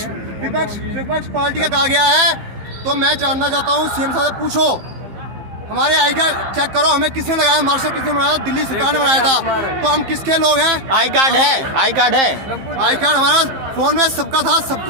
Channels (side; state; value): left; late; 15 ms